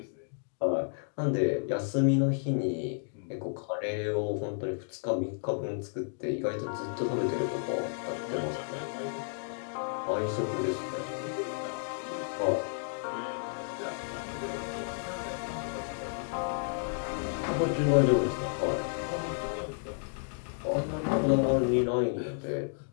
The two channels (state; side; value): silent; right; digital silence